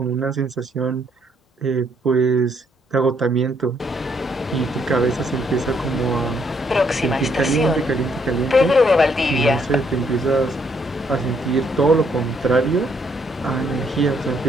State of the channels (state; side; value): normal; both; correlation 0.71